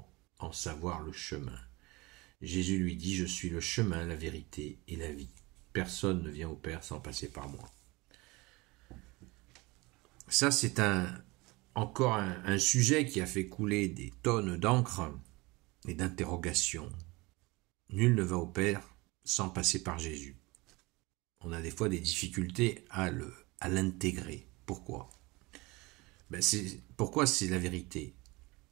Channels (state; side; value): quieter; left; 23.6 dB